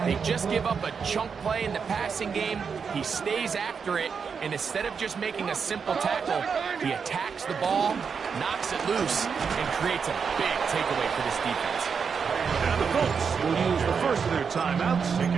They just give up a chunk play in the passing game. He stays after it, and instead of just making a simple tackle, he attacks the ball, knocks it loose, and creates a big takeaway for this defense. And the Colts will use the first of their timeouts,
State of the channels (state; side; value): quieter; left; 6.1 dB